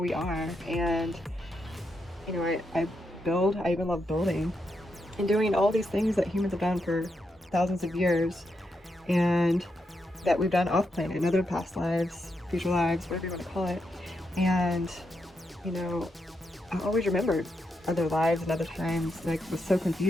are. And I even love building and doing all these things that humans have done for thousands of years. and that we've done off planet in other past lives, future lives, whatever you want to call it. And, you know, I always remembered other lives and other times, and I was so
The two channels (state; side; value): normal; both; correlation 0.83